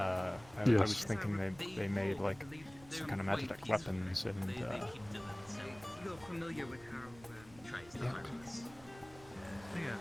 Yes. was thinking they made like some kind of Magitech weapons and. You're familiar with how Yeah.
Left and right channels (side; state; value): right; noise; rumble, 22 dB below the sound